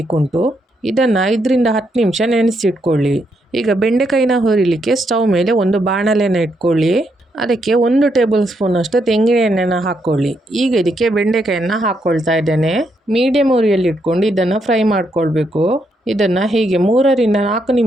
ಇದನ್ನು 5ರಿಂದ 10 ನಿಮಿಷ ನೆನೆಸಿಟ್ಕೊಳ್ಳಿ. ಈಗ ಬೆಂಡೆಕಾಯಿನ ಹುರಿಲಿಕ್ಕೆ ಸ್ಟವ್ ಮೇಲೆ ಒಂದು ಬಾಣಲೆನ ಇಟ್ಕೊಳ್ಳಿ. ಅದಕ್ಕೆ 1 ಟೇಬಲ್ ಸ್ಪೂನಷ್ಟು ತೆಂಗಿನ ಎಣ್ಣೆನ ಹಾಕ್ಕೊಳ್ಳಿ. ಈಗ ಇದಕ್ಕೆ ಬೆಂಡೆಕಾಯನ್ನು ಹಾಕ್ಕೊಳ್ತಾ ಇದ್ದೇನೆ. ಮೀಡಿಯಮ್ ಉರಿಯಲ್ಲಿ ಇಟ್ಕೊಂಡು ಇದನ್ನು ಫ್ರೈ ಮಾಡ್ಕೊಳ್ಬೇಕು. ಇದನ್ನು ಹೀಗೆ 3ರಿಂದ 4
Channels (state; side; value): normal; both; correlation 0.78